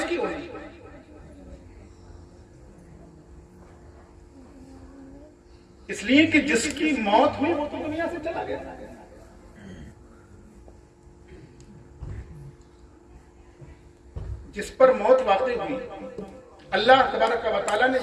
होगी? इसलिए कि जिसकी मौत हुई वो तो दुनिया से चला गया। जिस पर मौत वाक़ई हुई, अल्लाह तबारक व तआला ने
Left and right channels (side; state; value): both; identical; correlation 1.00